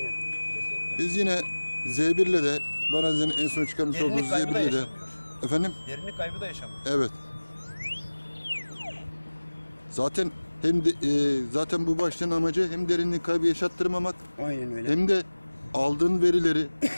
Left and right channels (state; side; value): inverted; both; correlation -1.00